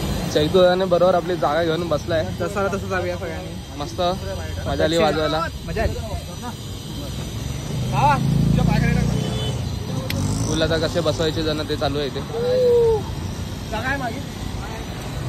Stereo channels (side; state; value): both; identical; correlation 1.00